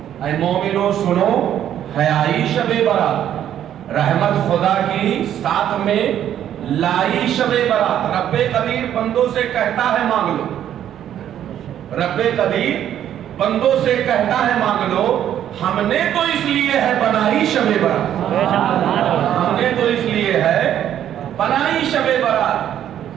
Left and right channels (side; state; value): left; quieter; 10.6 dB